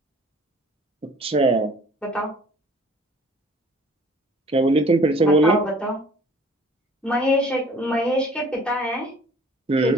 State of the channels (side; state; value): both; normal; correlation 0.51